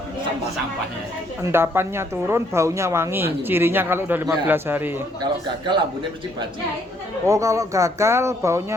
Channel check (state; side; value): normal; both; correlation 0.68